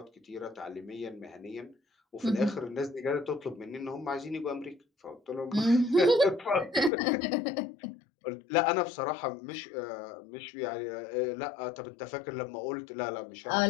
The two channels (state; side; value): drops out; right; at 6.9 s